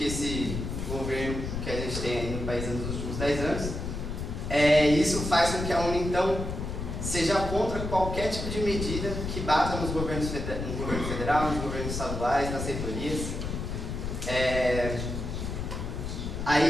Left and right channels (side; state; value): left; noise; rumble, 4 dB below the sound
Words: esse governo que a gente tem aí no país nos últimos 10 anos. Isso faz com que a UNE, então, seja contra qualquer tipo de medida que bata no governo federal, nos governos estaduais, nas reitorias.